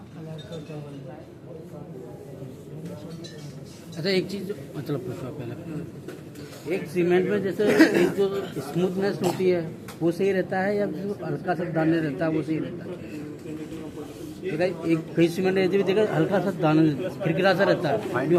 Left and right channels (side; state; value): both; identical; correlation 1.00